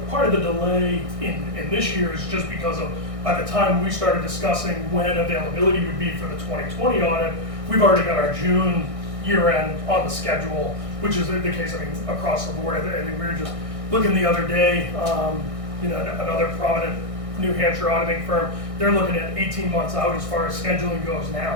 part of the delay in this year is just because of, by the time we started discussing when availability would be for the 2020 audit, we've already got our June year end on the schedule, which is the case, I mean, across the board. I think we were just looking the other day, you know, another prominent New Hampshire auditing firm, they're looking at 18 months out as far as scheduling goes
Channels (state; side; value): late; left; 1.6 ms